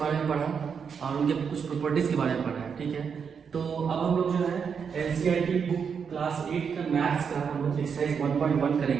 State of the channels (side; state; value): left; quieter; 6.5 dB